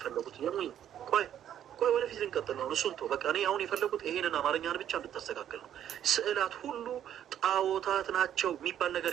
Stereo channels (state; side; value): quieter; left; 10.4 dB